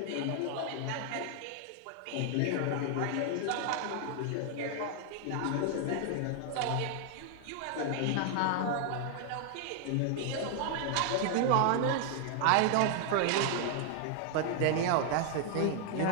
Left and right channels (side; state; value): both; different; correlation 0.00